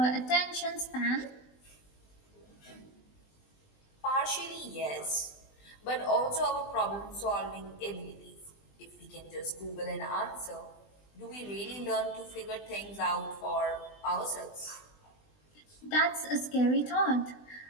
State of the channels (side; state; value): right; late; 20 ms